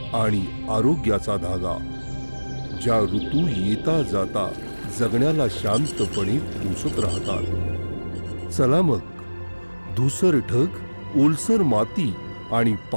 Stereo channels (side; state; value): both; inverted; correlation -1.00